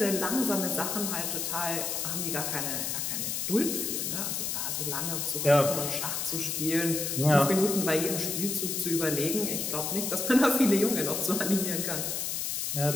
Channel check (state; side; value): noise; left; hiss, 1 dB below the sound